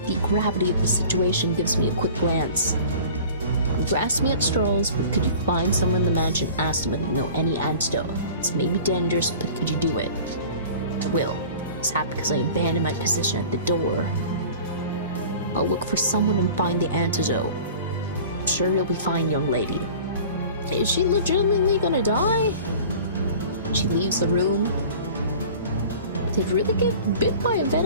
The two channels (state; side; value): inverted; both; correlation -0.42